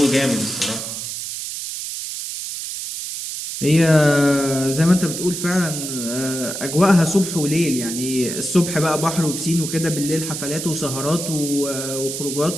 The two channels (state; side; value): noise; right; hiss, 6 dB below the sound